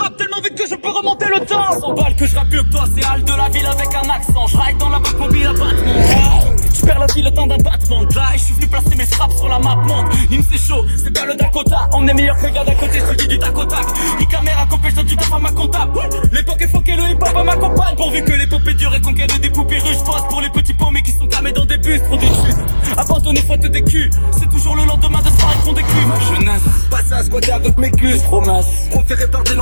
tellement vite que je peux remonter le temps. 100 balles que je rappe mieux que toi, c'est Hal de la ville avec un accent. Je ride dans la boîte mobile à battement. Je perds la vie le temps d'un battement de là et je suis venu placer mes frappes sur la map monde. Nîmes c'est chaud, c'est pas le Dakota. On est meilleur que le gars d'à côté, je te dis du tac au tac. Ni caméra copée, je donne du taf à ma comptable. L'époque est foquée, le hip-hop à ma compagne. Pourvu que l'épopée dure et conquête des poupées russes. Pose pour les petits paumés qui sont camés dans des bus. Trop des justes, abandonner faute des culs. C'est toujours le lendemain de soirée qu'on décuve. Ma jeunesse, passe à squatter avec mes culs. Promesse, proféré par des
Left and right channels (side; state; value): both; inverted; correlation -1.00